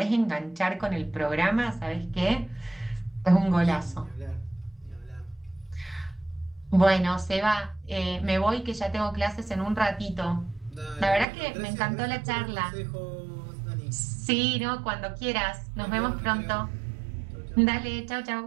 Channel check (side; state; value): left; drops out; at 11.2 s